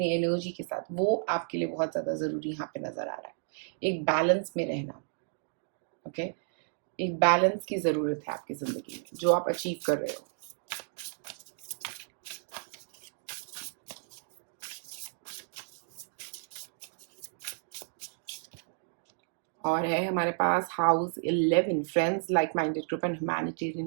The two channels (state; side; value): silent; left; digital silence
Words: एनर्जी के साथ, वो आपके लिए बहुत ज्यादा जरूरी यहाँ पे नजर आ रहा है। एक बैलेंस में रहना, ओके, एक बैलेंस की जरूरत है आपकी जिंदगी में जो आप अचीव कर रहे हो। और है हमारे पास house 11, friends, like minded group and